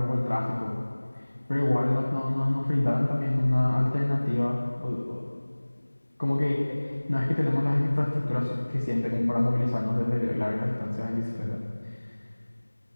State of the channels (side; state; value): both; inverted; correlation -1.00